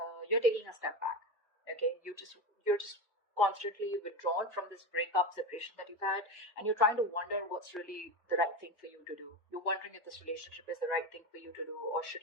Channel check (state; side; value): normal; both; correlation 0.20